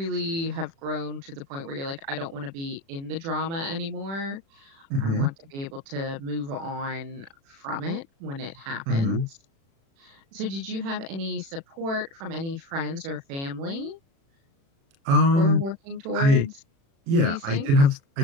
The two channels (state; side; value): late; left; 36 ms